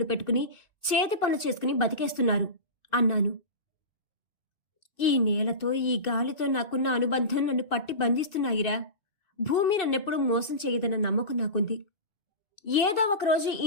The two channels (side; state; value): right; late; 2.4 ms